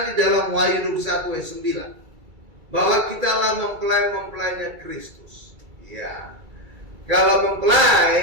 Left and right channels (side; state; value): left; late; 2.3 ms